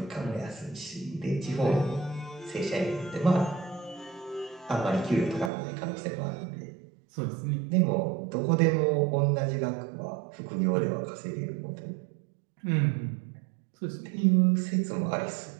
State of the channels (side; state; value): left; drops out; at 5.5 s